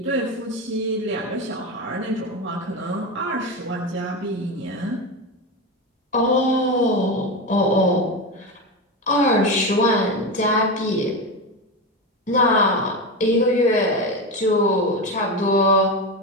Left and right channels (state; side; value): normal; both; correlation 0.18